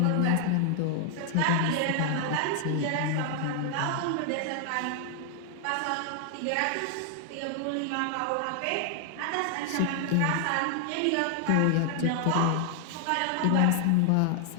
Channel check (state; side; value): different; both; correlation 0.00